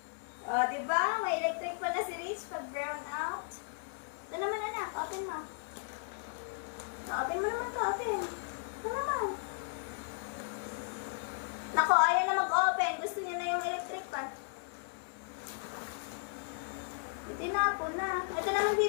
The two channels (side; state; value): right; silent; digital silence